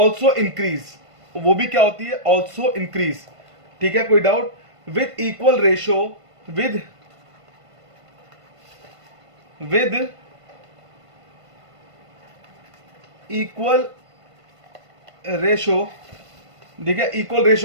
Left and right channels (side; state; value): left; late; 1.5 ms